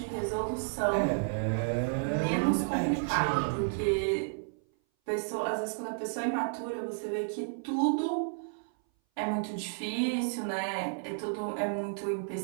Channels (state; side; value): silent; left; 57 dB below the other